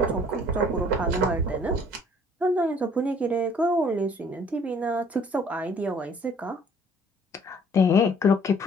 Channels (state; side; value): normal; both; correlation 0.57